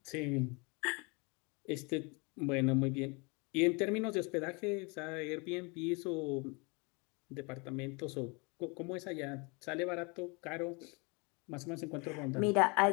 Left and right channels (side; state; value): right; quieter; 30.2 dB